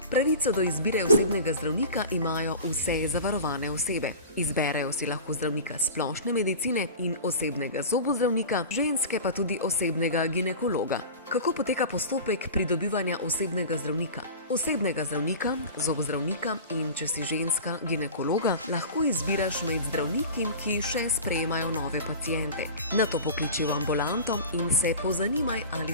Pravico do izbire osebnega zdravnika imajo vse zavarovane osebe. Izberejo si lahko zdravnika splošne medicine in osebnega zobozdravnika, ženske pa tudi osebnega ginekologa. Kako poteka postopek pridobivanja osebnega zdravnika? Osebnega zdravnika, zobozdravnika in, če si ženska, ginekologa, lahko izbiraš med zdravniki, ki še sprejemajo nove paciente. Nato pokliči v ambulanto in se pozanimaj,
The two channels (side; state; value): both; inverted; correlation -0.35